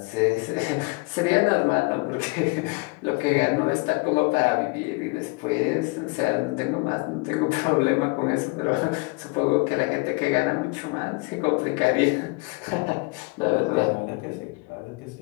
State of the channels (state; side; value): quieter; right; 27.5 dB